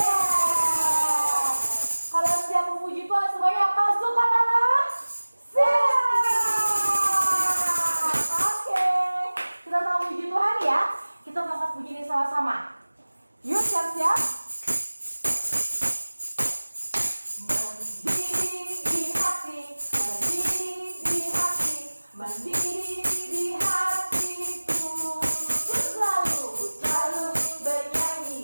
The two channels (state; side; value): inverted; both; correlation -1.00